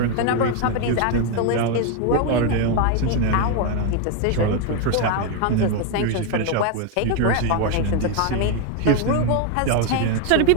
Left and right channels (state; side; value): different; both; correlation 0.01